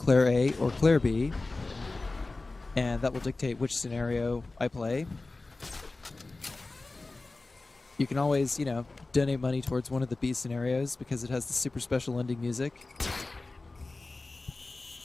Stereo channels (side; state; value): right; quieter; 3.3 dB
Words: A, or Claire B, and that will dictate which scenario I play. You can always, you know, donate money towards one of the B scenarios because it has the super special ending music.